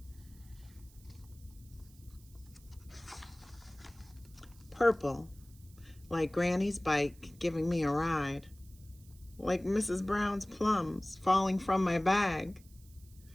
Purple, like Granny's bike giving me a ride, like Mrs. Brown's plums falling from my bag,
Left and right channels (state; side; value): noise; right; hiss, 26 dB below the sound